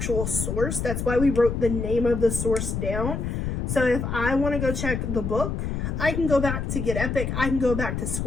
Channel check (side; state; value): left; noise; rumble, 2 dB below the sound